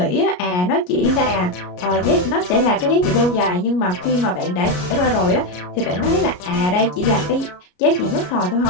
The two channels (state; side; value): late; right; 33 ms